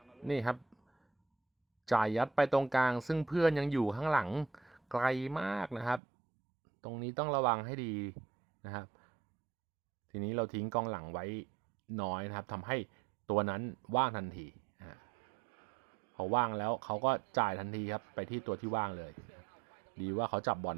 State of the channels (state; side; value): drops out; left; at 6.0 s